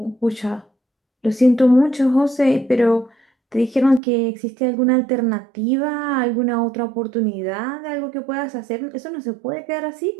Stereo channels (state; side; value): drops out; left; at 4.0 s